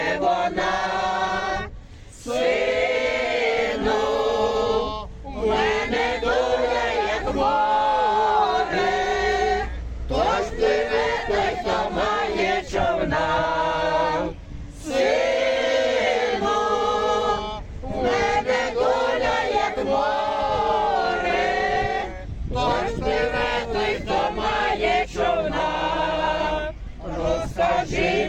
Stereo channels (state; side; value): identical; both; correlation 1.00